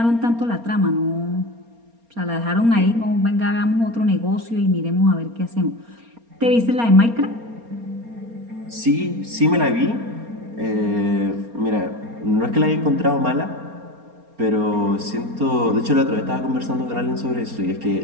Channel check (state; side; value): late; left; 4.3 ms